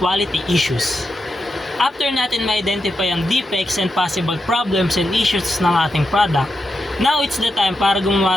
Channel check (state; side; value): normal; both; correlation 0.86